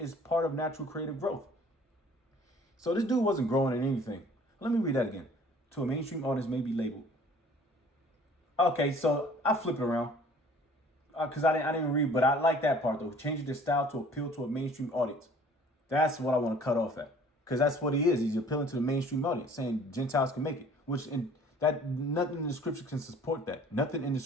part of natural creative growth. So this dude wasn't growing in anything. Let me read that again. To a mainstream audience may be labeled. Okay, so I flip it around. Because I didn't even read, but I like that part though. Changing their style to appeal to a mainstream audience. That's what I want to cut off at. Because that's what he is. He's appealing to the mainstream audience, saying Gentiles can make it. Nothing in the scripture can support that. Nothing in the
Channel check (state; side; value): normal; both; correlation 0.52